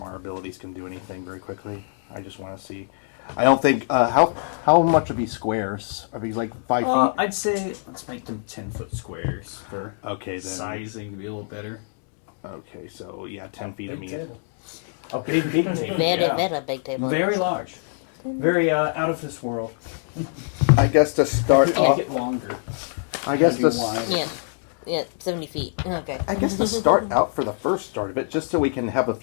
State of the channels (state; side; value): silent; right; digital silence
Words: abilities can do anything very quickly. I just want to see. I don't think how much are these squares? Are these like 5 feet? I'd say let's make them 10-foot squares for Okay, then. sizing to be a little better. Okay, so yeah, 10 feet. I Big mean, table. Okay, big table. Very, yeah. very big table. Very large. Very out of this world. I guess to start Make off. it longer. I guess Maybe to. wide. Yeah. Yeah, 70 feet. Okay. I guess to start out for the first start of it, just so we can have a